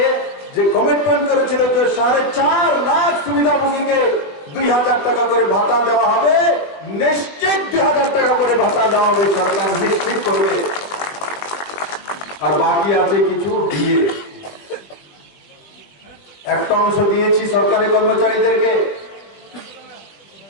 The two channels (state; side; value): late; right; 21 ms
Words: যে কমিটমেন্ট করেছিল যে 4.5 লাখ সুবিধাভোগীকে 2,000 টাকা করে ভাতা দেওয়া হবে, নিশ্চিত 2,000 টাকা করে ভাতা দেওয়া হবে, সরকার নিশ্চিত করবে। আর বাকি আছে কিছু দিয়ে, একটা অংশ দিয়েছি সরকারি কর্মচারীদেরকে,